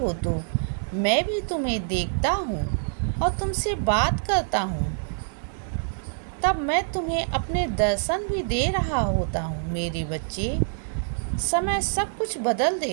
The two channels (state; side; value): silent; left; digital silence